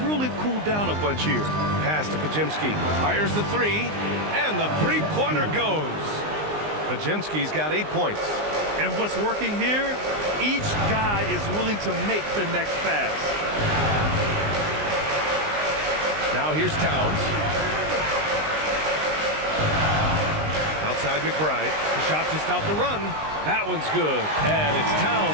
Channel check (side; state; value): left; late; 19 ms